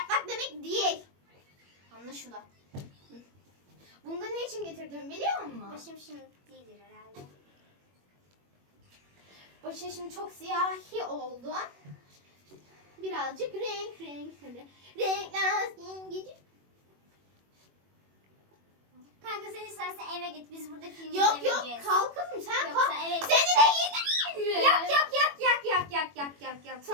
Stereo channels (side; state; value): left; late; 21 ms